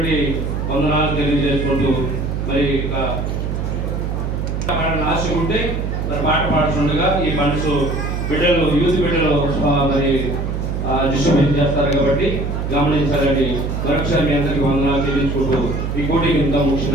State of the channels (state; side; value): noise; right; hum, 2 dB below the sound